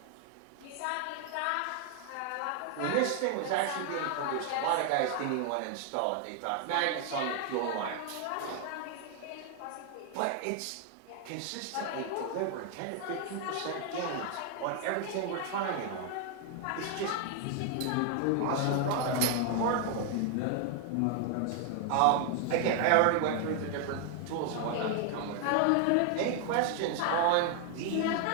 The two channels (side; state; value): both; different; correlation 0.00